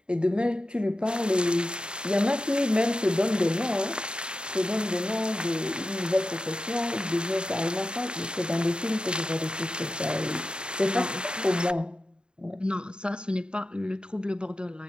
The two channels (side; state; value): left; late; 0.050 ms